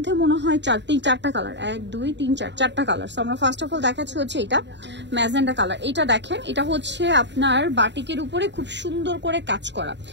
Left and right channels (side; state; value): left; late; 0.52 ms